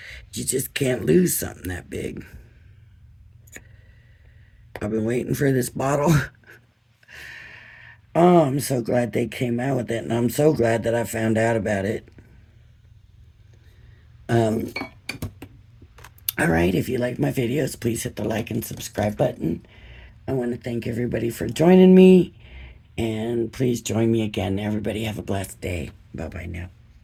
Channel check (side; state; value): both; identical; correlation 1.00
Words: You just can't lose something that big. I've been waiting for this bottle. Oh, I'm so glad they came out with it, and I'm so glad that I found out about it. Alright, if you like my videos, please hit the like and subscribe button. I want to thank everybody for joining me, and please join me again. Everybody have a blessed day. Bye-bye now.